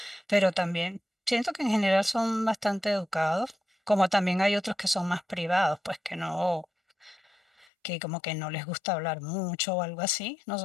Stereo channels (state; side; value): drops out; right; at 7.7 s